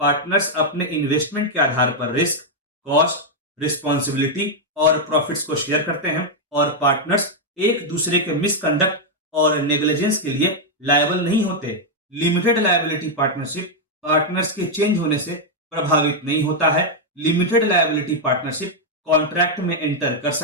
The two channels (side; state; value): both; normal; correlation -0.01